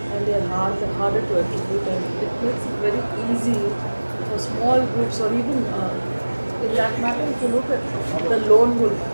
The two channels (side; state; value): both; inverted; correlation -1.00